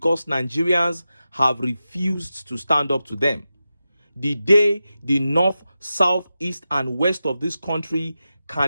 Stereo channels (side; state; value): both; inverted; correlation -0.92